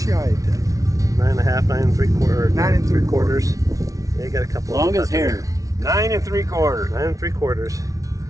shy of 10. 9.5, 9 3/4. 9 3/4. Yeah, you got a couple. Long of as hair. 9 3/4. 9 3/4.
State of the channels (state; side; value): late; left; 0.17 ms